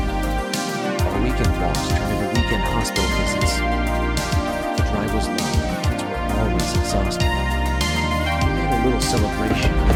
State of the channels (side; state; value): both; identical; correlation 1.00